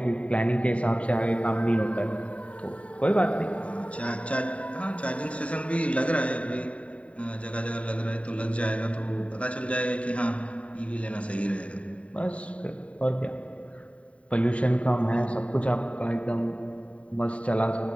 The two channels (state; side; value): late; right; 0.065 ms